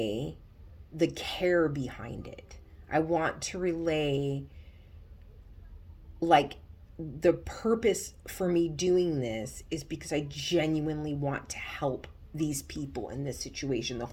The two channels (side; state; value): both; identical; correlation 1.00